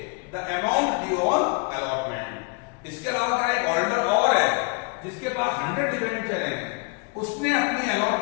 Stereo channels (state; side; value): quieter; right; 32.5 dB